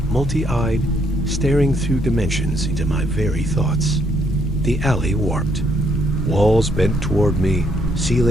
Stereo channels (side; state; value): both; normal; correlation 0.72